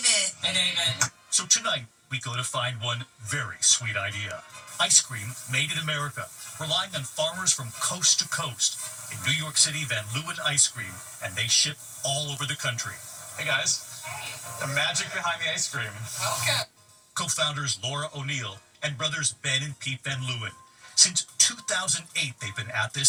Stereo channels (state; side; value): identical; both; correlation 1.00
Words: Hey, David. So tonight, we go to find one very sweet idea. Ice cream made in America, relying on farmers from coast to coast. In New York City, Van Leeuwen Ice Cream, and they ship all over the country. Hey guys, the magic behind the ice cream. Okay. Co-founders Laura O'Neill and brothers Ben and Pete Van Leeuwen. Since 2008, they've been at